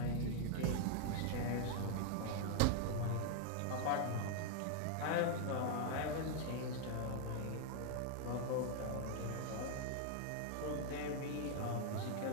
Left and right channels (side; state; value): both; different; correlation 0.00